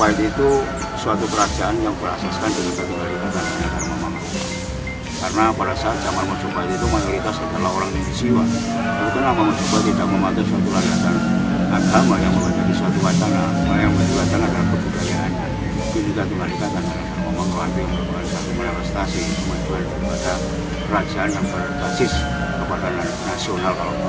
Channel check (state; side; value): identical; both; correlation 1.00